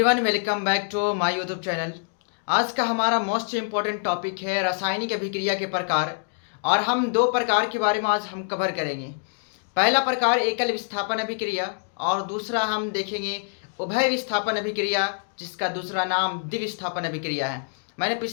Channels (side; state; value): right; silent; digital silence